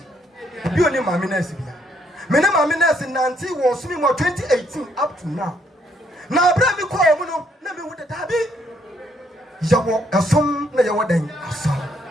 bi oni mami na esi bia me ne mami na esi nanti wo so me 2018 up to now na abra me call mu no na me hu da dabi yawo asom na yawo dan asom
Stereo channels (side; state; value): both; normal; correlation 0.71